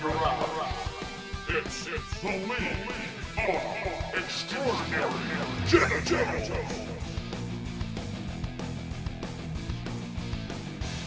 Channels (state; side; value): identical; both; correlation 1.00